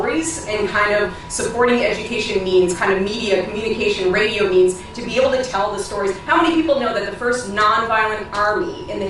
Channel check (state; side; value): identical; both; correlation 1.00